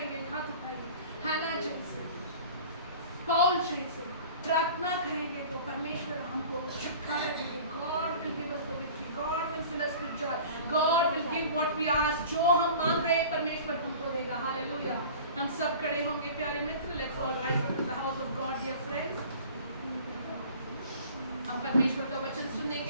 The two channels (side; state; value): both; inverted; correlation -0.43